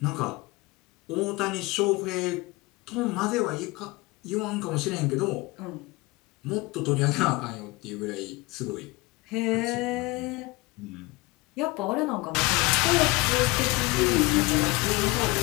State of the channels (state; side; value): quieter; right; 23.1 dB